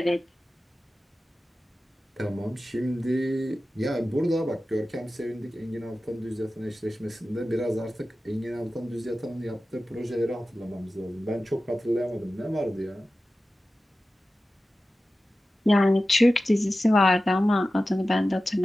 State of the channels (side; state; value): both; normal; correlation 0.94